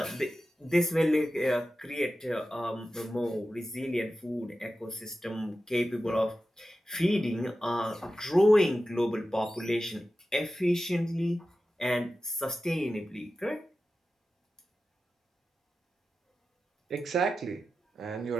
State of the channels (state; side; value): normal; both; correlation 0.93